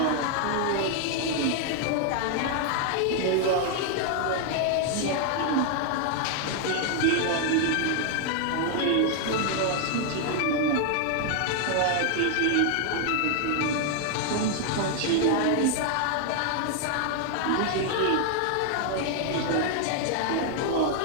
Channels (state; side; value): different; both; correlation 0.00